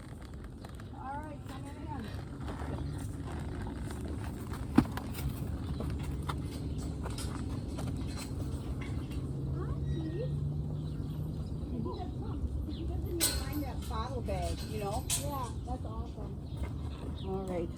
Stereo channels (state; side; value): identical; both; correlation 1.00